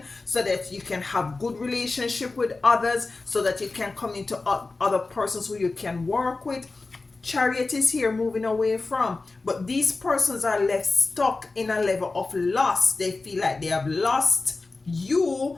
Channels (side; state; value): right; quieter; 3.6 dB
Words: so that you can have good relationship with others, so that you can come into other persons who you can work with. Chariot is here moving away from, but these persons are left stuck in a level of loss. They feel like they have lost